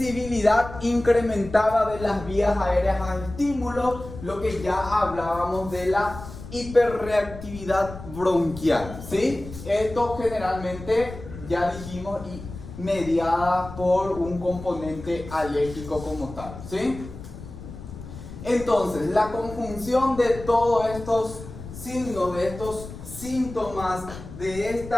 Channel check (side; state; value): left; noise; rumble, 13 dB below the sound